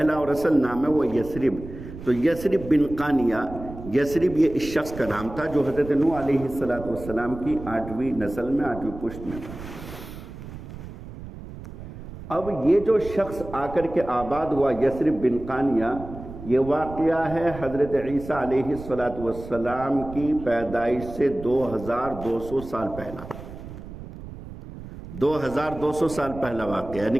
اور اصل نام ہے، وہ یثرب۔ تو یثرب بن قانیہ، یثرب یہ اس شخص کا نام تھا جو حضرت نوح علیہ السلام کی 8ویں نسل میں 8ویں پشت میں تھا۔ اب یہ جو شخص آ کر کے آباد ہوا یثرب بن قانیہ، یہ واقعہ ہے حضرت عیسیٰ علیہ السلام کی پیدائش سے 2200 سال پہلا، 2200 سال پہلا واقعہ، یعنی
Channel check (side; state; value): right; noise; rumble, 13 dB below the sound